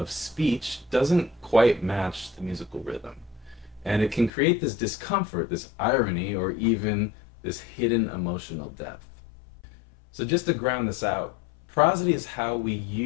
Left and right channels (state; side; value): drops out; right; at 4.3 s